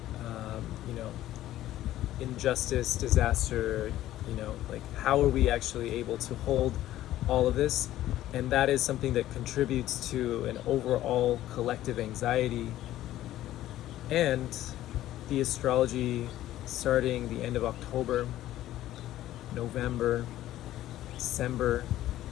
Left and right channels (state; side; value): quieter; right; 13.9 dB